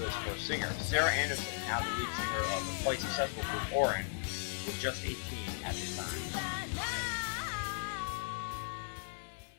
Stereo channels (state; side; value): silent; right; 53 dB below the other